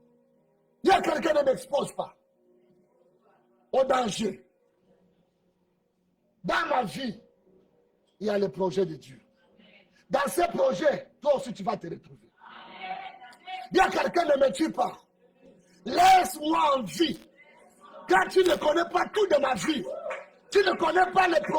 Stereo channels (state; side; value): identical; both; correlation 1.00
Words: Il y a quelqu'un qui ne m'expose pas au danger. Dans ma vie, il y a le projet de Dieu. Dans ce projet, toi aussi tu vas te retrouver. Il y a quelqu'un qui ne me tue pas. Laisse-moi en vie. Car tu ne connais pas tout de ma vie. Tu ne connais pas le